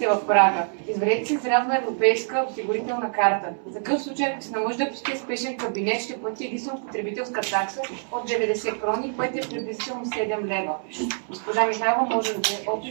в Прага. Извадете си срядна европейска осигурителна карта. За такъв случай, ако се наложи да посетите спешен кабинет, ще плати единствено потребителска такса от 90 крони, което е приблизително 7 лева. Госпожа Михайлова може да даде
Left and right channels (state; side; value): silent; left; 61 dB below the other